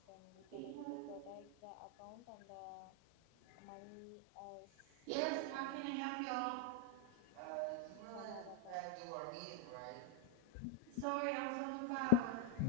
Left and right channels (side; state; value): both; different; correlation 0.00